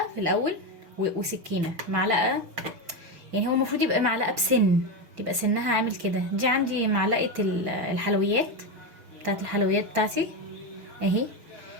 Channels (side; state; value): left; late; 6.4 ms